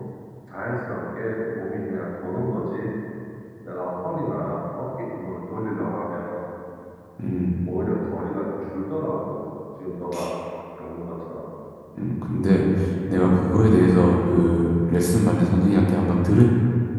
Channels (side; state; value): both; identical; correlation 1.00